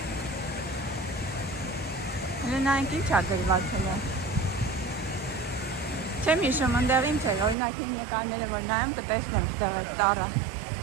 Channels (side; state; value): left; drops out; at 7.6 s